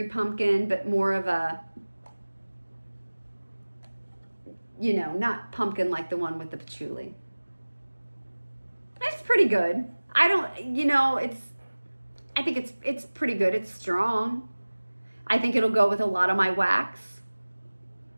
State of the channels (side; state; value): both; inverted; correlation -1.00